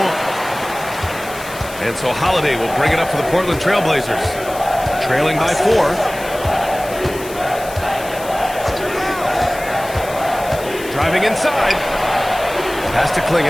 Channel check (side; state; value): left; noise; hiss, 15 dB below the sound